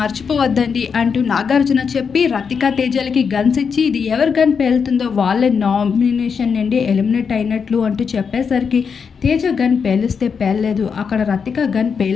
మర్చిపోవద్దండి అంటూ నాగార్జున చెప్పి రతిక తేజలకి గన్స్ ఇచ్చి ఇది ఎవరు గన్ పేలుతుందో వాళ్ళే నామినేషన్ నుండి ఎలిమినేట్ అయినట్లు అంటూ చెప్పేసరికి తేజ గన్ పేలిస్తే పేలలేదు. అక్కడ రతిక గన్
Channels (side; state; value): right; quieter; 6.1 dB